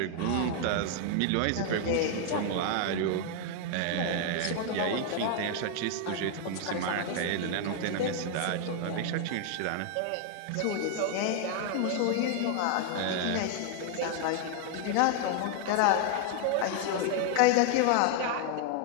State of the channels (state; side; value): different; both; correlation 0.00